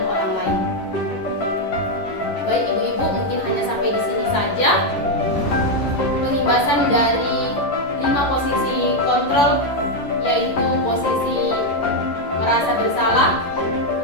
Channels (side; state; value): right; late; 11 ms